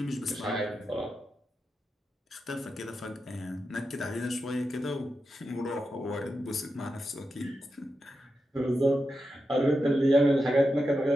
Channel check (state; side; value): normal; both; correlation 0.88